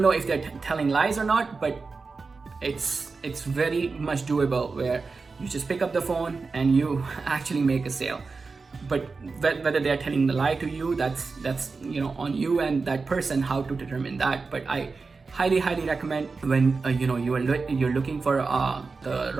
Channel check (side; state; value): left; quieter; 4.3 dB